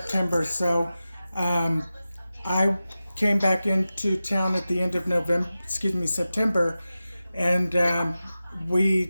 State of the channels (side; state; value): both; inverted; correlation -0.94